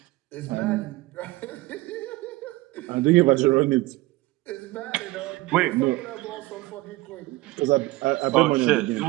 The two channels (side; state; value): left; quieter; 19.9 dB